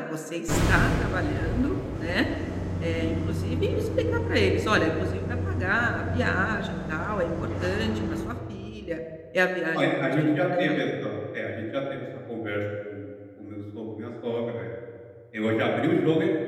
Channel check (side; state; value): both; identical; correlation 1.00